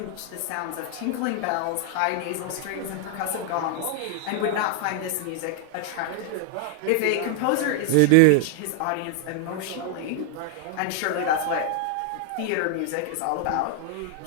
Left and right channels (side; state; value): both; different; correlation 0.00